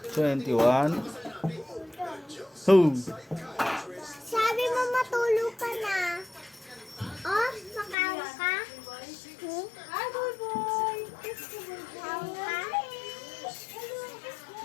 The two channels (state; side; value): drops out; right; at 8.0 s